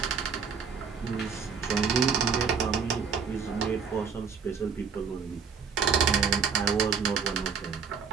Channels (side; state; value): left; quieter; 6.1 dB